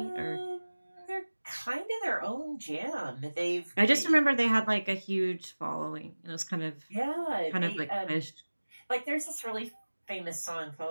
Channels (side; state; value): both; inverted; correlation -1.00